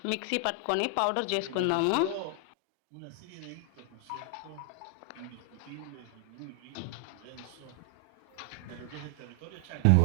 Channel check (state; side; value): different; both; correlation 0.00